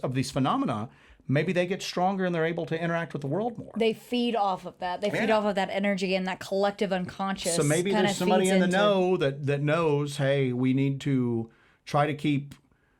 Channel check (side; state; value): both; identical; correlation 1.00